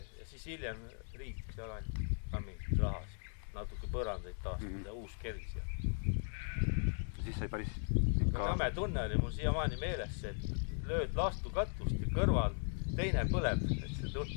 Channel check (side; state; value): right; silent; 52 dB below the other